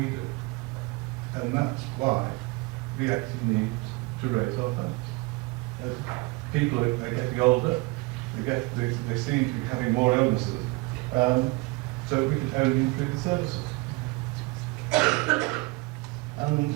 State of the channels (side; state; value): left; quieter; 24.9 dB